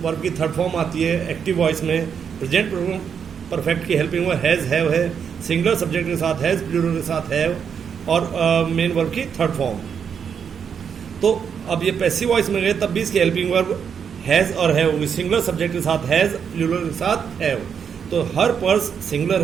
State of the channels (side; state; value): left; quieter; 7.2 dB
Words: वर्ब की थर्ड फॉर्म आती है एक्टिव वॉइस में। प्रेजेंट परफेक्ट की हेल्पिंग हुआ हैज हैव है। सिंगुलर सब्जेक्ट के साथ हैज, प्लूरल के साथ हैव और मेन वर्ब की थर्ड फॉर्म। तो अब ये पैसिव वॉइस में गए तब भी इसकी हेल्पिंग वर्ब हैज और हैव होगी। सिंगुलर सब्जेक्ट के साथ हैज, प्लूरल के साथ हैव। तो हर पर्स सिंगुलर